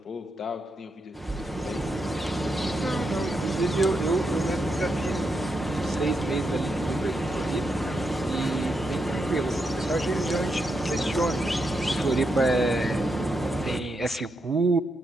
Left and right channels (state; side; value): normal; both; correlation 0.83